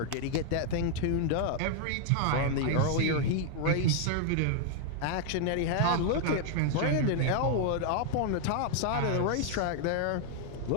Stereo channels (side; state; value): both; different; correlation 0.00